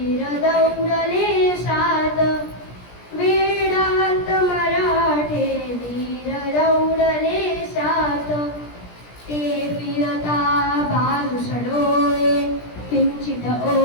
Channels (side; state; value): right; late; 17 ms